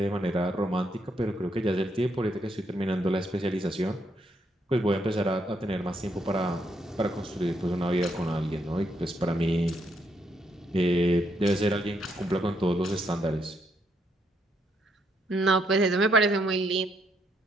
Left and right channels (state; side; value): normal; both; correlation 0.75